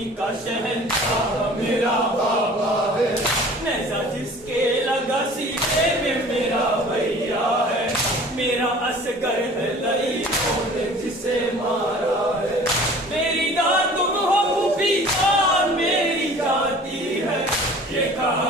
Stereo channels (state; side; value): normal; both; correlation 0.46